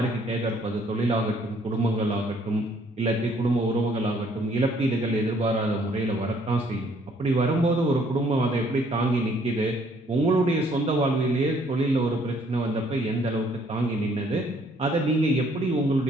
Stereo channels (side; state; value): both; normal; correlation 0.63